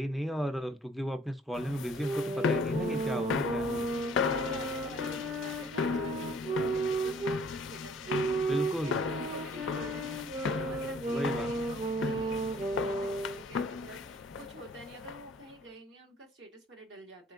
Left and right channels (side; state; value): both; normal; correlation 0.57